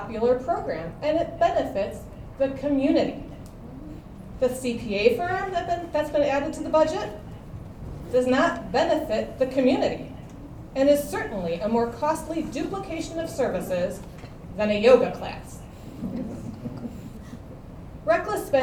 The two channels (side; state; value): both; identical; correlation 1.00